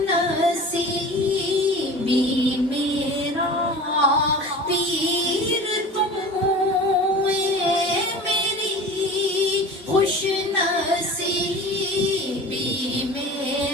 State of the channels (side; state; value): both; normal; correlation 0.38